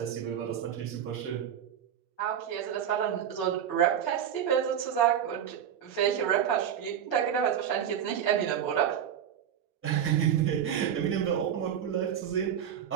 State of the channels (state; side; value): quieter; left; 9.2 dB